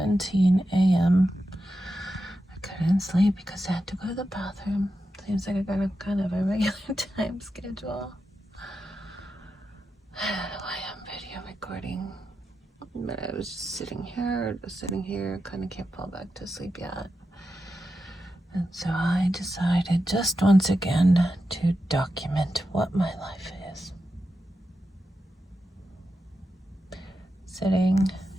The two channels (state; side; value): normal; both; correlation 0.89